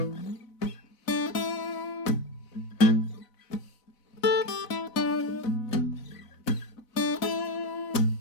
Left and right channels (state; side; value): late; right; 4.0 ms